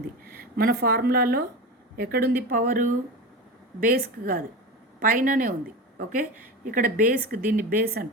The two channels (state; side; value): normal; both; correlation 0.25